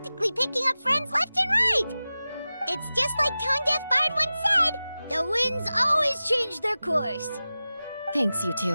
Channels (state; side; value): inverted; both; correlation -0.96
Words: picking up friends left and right. It's just like Tone Deaf Bard once said, the winds always change their course. Thanks, you